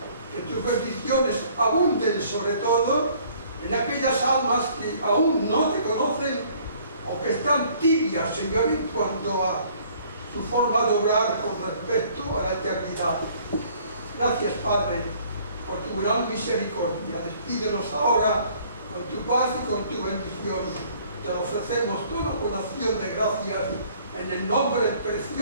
que tus bendiciones abunden sobre todo en aquellas almas que aún no te conocen o que están tibias, Señor, en cuanto a su forma de obrar con respecto a la eternidad. Gracias, Padre, por tu gran misericordia. Despídenos ahora con tu paz y con tu bendición. Te lo ofrecemos todo con acción de gracias en el nombre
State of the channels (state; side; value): inverted; both; correlation -0.58